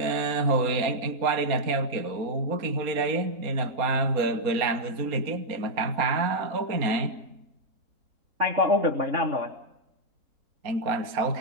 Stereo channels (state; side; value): late; left; 4.2 ms